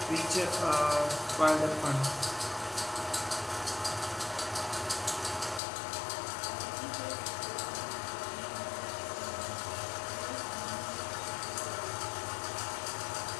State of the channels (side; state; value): right; drops out; at 5.6 s